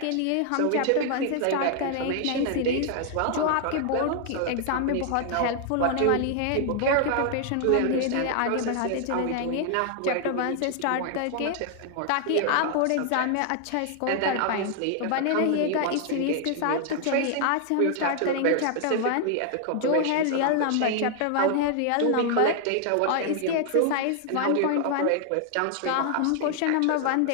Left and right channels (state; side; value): different; both; correlation 0.00